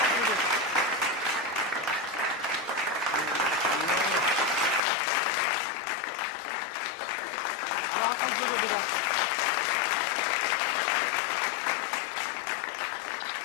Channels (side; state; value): right; drops out; at 4.8 s